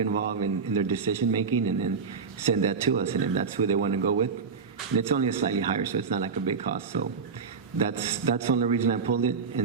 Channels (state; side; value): quieter; left; 5.4 dB